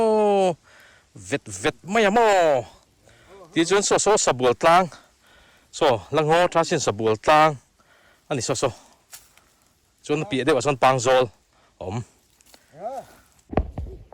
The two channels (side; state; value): both; identical; correlation 1.00